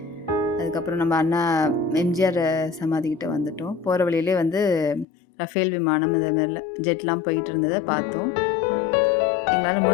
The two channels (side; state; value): right; drops out; at 5.1 s